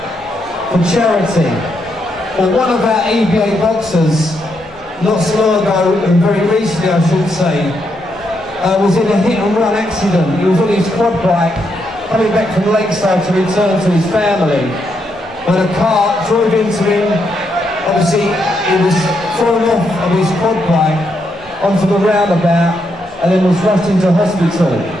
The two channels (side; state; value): both; normal; correlation 0.79